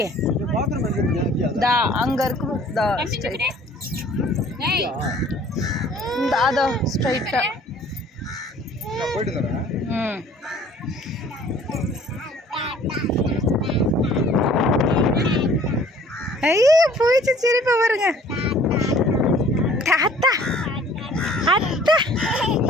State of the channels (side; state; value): both; normal; correlation 0.53